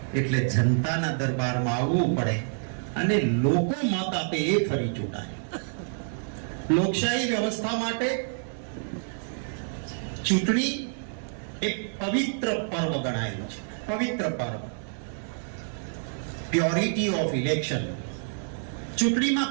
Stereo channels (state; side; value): silent; left; digital silence